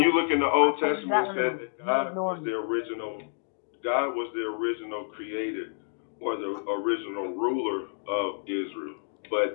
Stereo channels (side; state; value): right; silent; digital silence